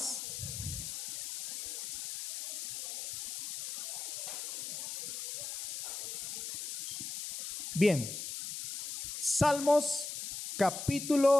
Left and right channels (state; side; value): noise; left; hiss, 6 dB below the sound